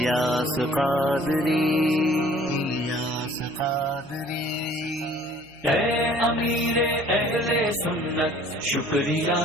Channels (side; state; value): right; noise; hum, 27 dB below the sound